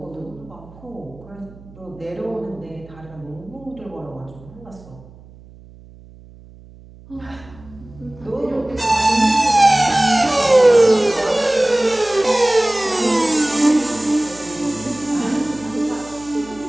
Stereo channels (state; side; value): noise; right; hum, 22 dB below the sound